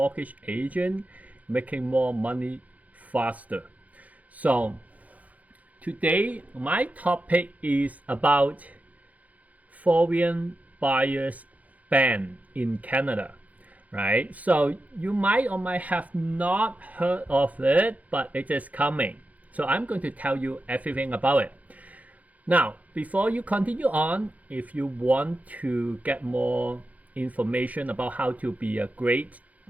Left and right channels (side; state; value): left; late; 0.073 ms